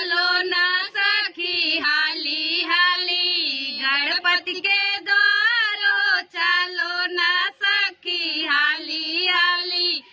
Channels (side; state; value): both; identical; correlation 1.00